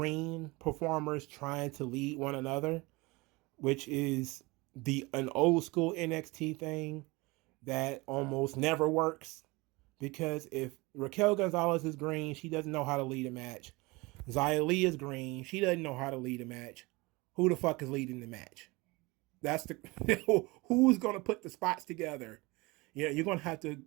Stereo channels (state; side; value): quieter; left; 24.1 dB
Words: performers trying to lead one another, which is an old school NXT thing that almost never works, because if Raquel Gonzalez is green, she doesn't know how to lead a match. Xia Li is green, she doesn't know how to lead a match. Who the fuck is leading the match? That's who's going to put the spots together. You're going to have to